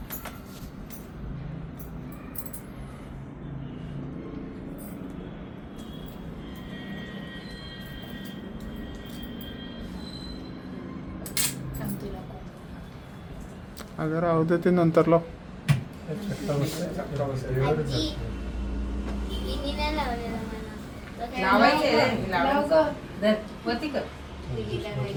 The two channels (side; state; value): both; identical; correlation 1.00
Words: अगर राहू दे ते नंतर लाव.